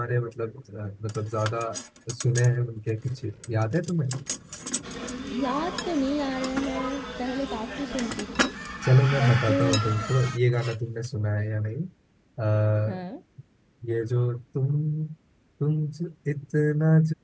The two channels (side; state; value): both; identical; correlation 1.00